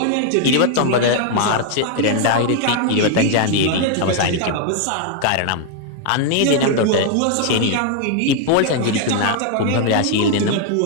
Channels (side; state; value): both; different; correlation 0.00